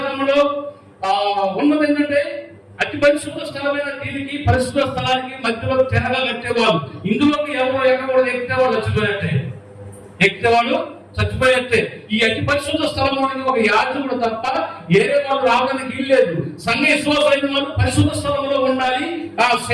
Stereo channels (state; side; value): identical; both; correlation 1.00